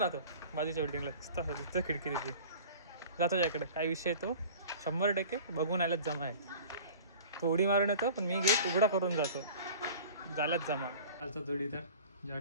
राहतो बाजूच्या बिल्डिंगला. तिथं खिडकी त्याची जातो त्याकडे. काय विषय तो 100% बघून आल्याच जमा आहे. तो उडी मारून येतो पण मी गेट उघडा करून जातो. झाल्याच जमा. आजचा जोडीदार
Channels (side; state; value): both; inverted; correlation -0.42